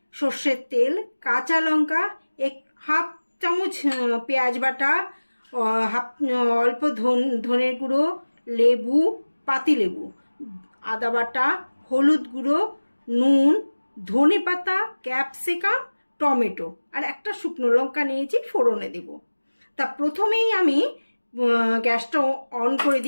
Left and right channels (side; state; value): both; inverted; correlation -1.00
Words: সর্ষের তেল, কাঁচা লঙ্কা, হাফ চামচ পেঁয়াজ বাটা, অল্প ধনের গুঁড়ো, লেবু, পাতিলেবু, আদা বাটা, হলুদ গুঁড়ো, নুন, ধনে পাতা, ক্যাপসিকাম, টমেটো আর একটা শুকনো লঙ্কা নিয়েছি, ফোড়নে দেব। তা প্রথমেই আমি গ্যাসটা অন করে